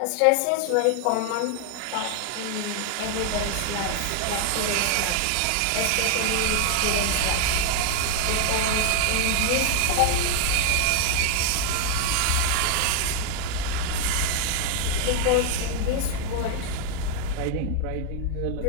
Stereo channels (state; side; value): different; both; correlation 0.00